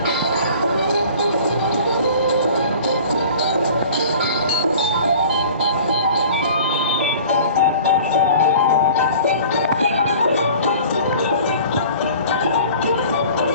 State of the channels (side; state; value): both; inverted; correlation -0.45